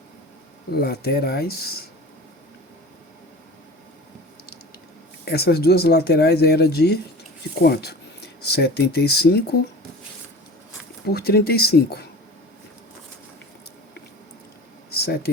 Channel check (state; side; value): normal; both; correlation 0.38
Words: laterais. Essas duas laterais eram de quanto? 75 por 35.